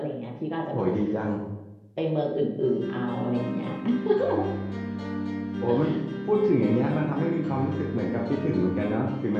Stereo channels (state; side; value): identical; both; correlation 1.00